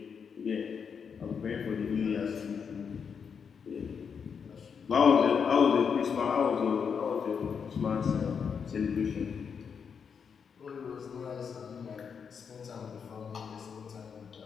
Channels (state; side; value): quieter; right; 6.5 dB